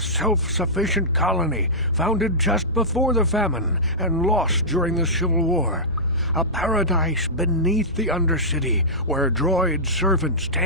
colony founded just before the famine and lost during the Civil War. A paradise beneath the Undercity where droid servants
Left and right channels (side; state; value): both; normal; correlation -0.15